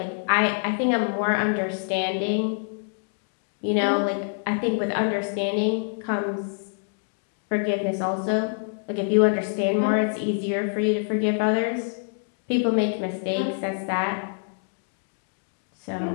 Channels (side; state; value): right; silent; digital silence